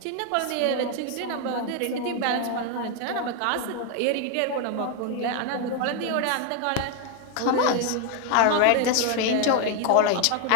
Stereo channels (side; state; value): both; different; correlation 0.01